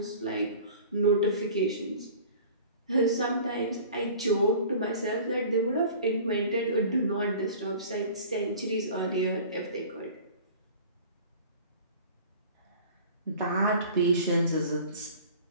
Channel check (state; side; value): inverted; both; correlation -0.43